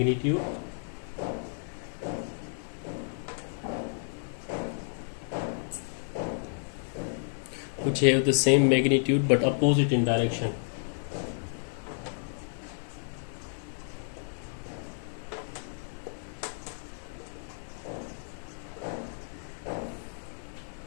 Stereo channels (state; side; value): silent; right; 57 dB below the other